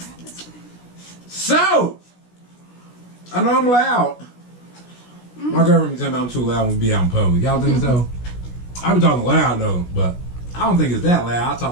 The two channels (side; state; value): right; late; 16 ms